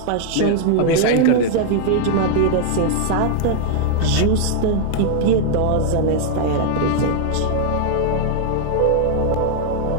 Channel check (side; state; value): both; different; correlation -0.01